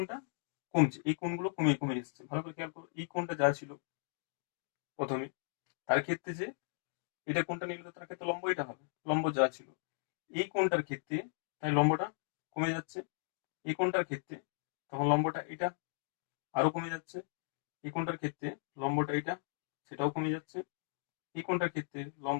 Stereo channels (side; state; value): right; silent; digital silence